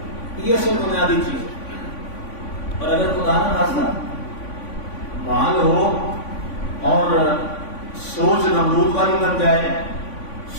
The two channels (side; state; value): right; late; 3.5 ms